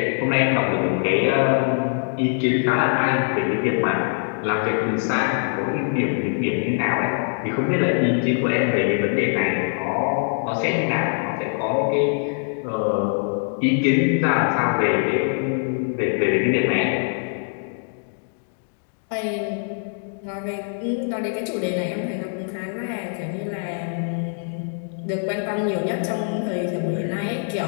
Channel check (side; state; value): right; silent; 63 dB below the other